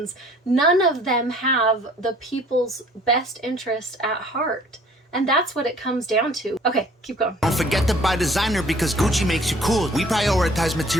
None of them have the people's best interest at heart. And that's what it comes down to. Okay, keep going. Don't forget to buy designer because Gucci makes you cool. We prioritize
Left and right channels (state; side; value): normal; both; correlation 0.54